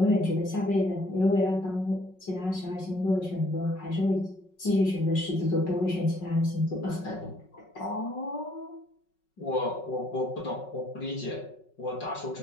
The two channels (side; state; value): right; late; 5.4 ms